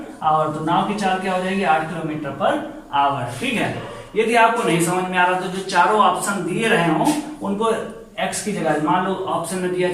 आवर। तो नाव की चाल क्या हो जाएगी? 8 किलोमीटर पर आवर, ठीक है। यदि आपको नहीं समझ में आ रहा तो जो चारों ऑप्शन दिए रहे हो उनको x की जगह, मान लो ऑप्शन में दिया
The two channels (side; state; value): both; identical; correlation 1.00